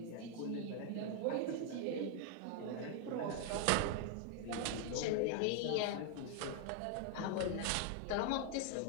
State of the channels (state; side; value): different; both; correlation 0.00